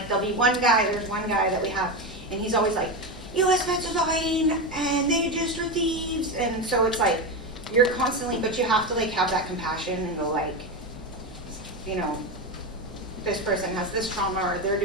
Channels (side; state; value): both; normal; correlation 0.16